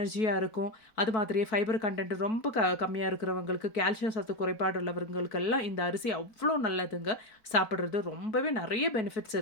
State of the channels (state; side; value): late; right; 4.6 ms